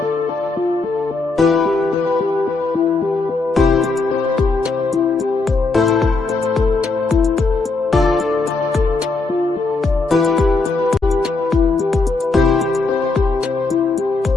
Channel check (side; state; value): right; quieter; 3.7 dB